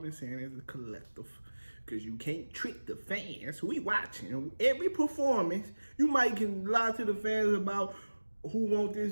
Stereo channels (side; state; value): both; inverted; correlation -1.00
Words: saying as a collective, because you can't trick the fans. We watching every performance. You might can lie to the fans about who want